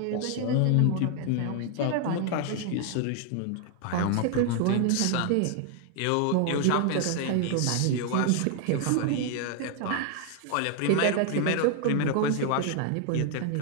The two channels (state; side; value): different; both; correlation 0.00